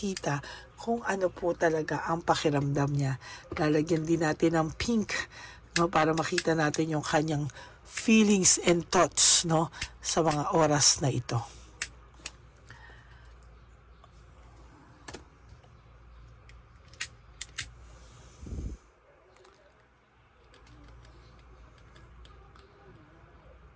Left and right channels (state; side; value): identical; both; correlation 1.00